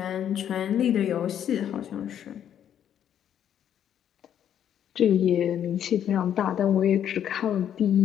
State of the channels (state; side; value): quieter; right; 9.8 dB